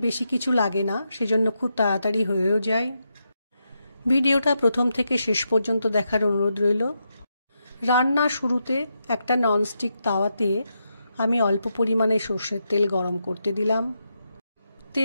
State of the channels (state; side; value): inverted; both; correlation -0.84